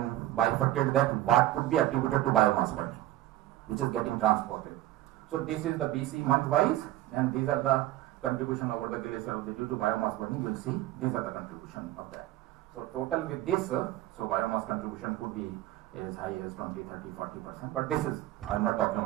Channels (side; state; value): left; quieter; 15.1 dB